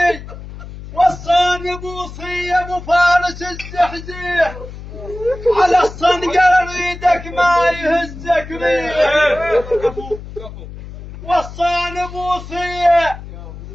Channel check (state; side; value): noise; left; hum, 13 dB below the sound